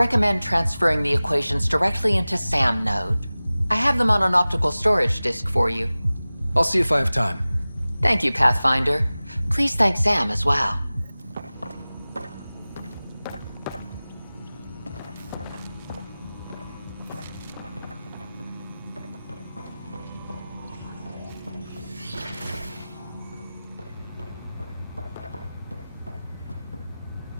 transferring the equations directly into SAM node. I have them on an optical storage disk for you. I'll see if I have time. Thank you, Pathfinder. Please thank Sam as well.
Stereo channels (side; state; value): both; inverted; correlation -0.98